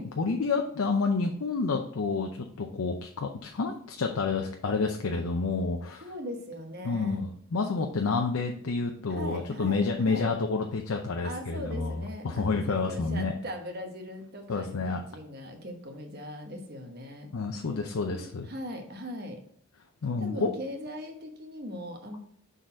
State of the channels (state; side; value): quieter; right; 3.5 dB